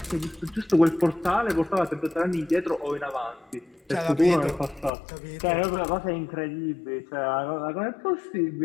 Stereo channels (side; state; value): right; drops out; at 4.9 s